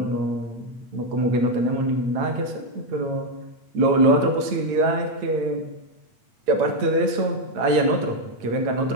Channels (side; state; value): left; late; 8.4 ms